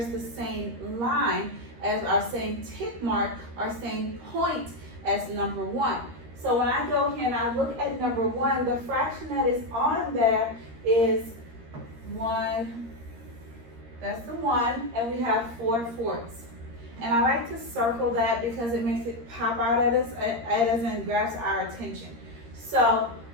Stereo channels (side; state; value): left; late; 13 ms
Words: the same line as our same tick mark, our same point as number 1. So when I go here and I look at number 1, the fraction that is on there is 1, that's the 1, and we have 4 fourths. And I like to circle that because it makes it pop out at us and grabs our attention. So